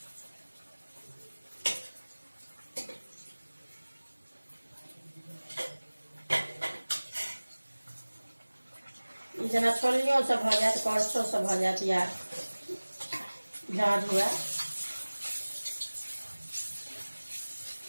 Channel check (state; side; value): inverted; both; correlation -1.00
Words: ई जेना छोलनियों से भऽ जायत, करछो से भऽ जायत, या झाँझ हुए।